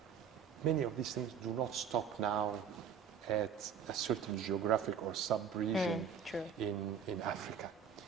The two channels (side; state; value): left; quieter; 7.3 dB